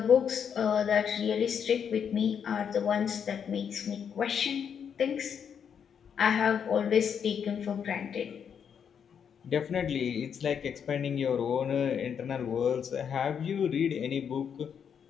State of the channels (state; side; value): quieter; right; 7.6 dB